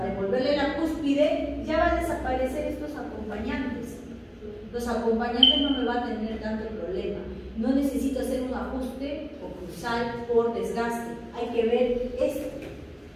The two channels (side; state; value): both; identical; correlation 1.00